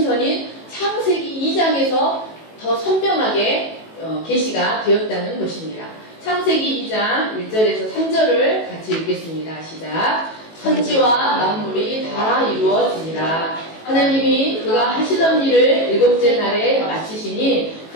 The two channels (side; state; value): right; late; 18 ms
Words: 전인 창세기 2장에서 더 선명하게 계시가 되었다는 것입니다. 창세기 2장 1절에서 3절을 같이 읽겠습니다. 시작. 천지와 만물이 다 이루어지니라. 하나님이 그가 하시던 일을 일곱째 날에 마치시니